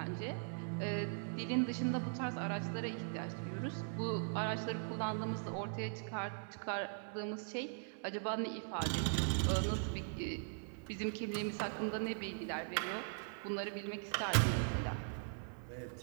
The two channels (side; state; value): left; silent; digital silence